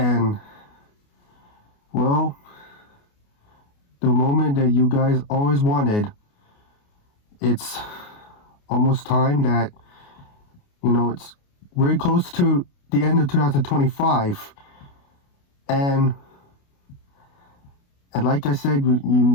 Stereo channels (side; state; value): right; late; 28 ms